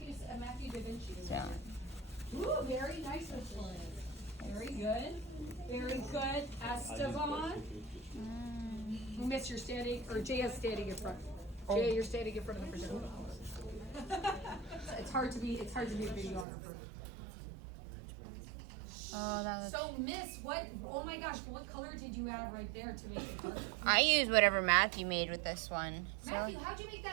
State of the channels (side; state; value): left; drops out; at 16.4 s